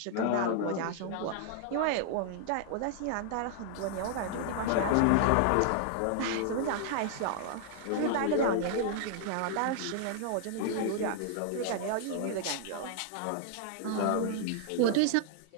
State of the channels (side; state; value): both; different; correlation -0.01